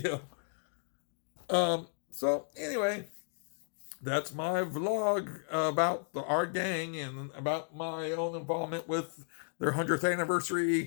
So anyway, that's my vlog about the Art Gang and about my own involvement with their 100th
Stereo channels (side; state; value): right; silent; digital silence